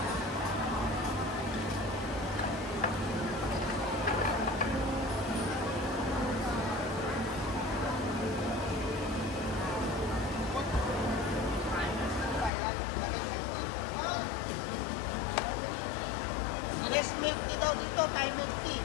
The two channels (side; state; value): right; drops out; at 12.5 s